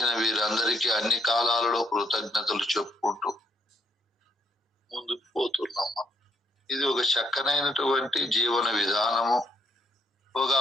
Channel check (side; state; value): both; normal; correlation 0.69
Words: వీరందరికీ అన్ని కాలాలలో కృతజ్ఞతలు చెప్పుకుంటూ ముందుకు పోతున్నాం. ఇది ఒక చక్కనైనటువంటి జీవన విధానము, ఒక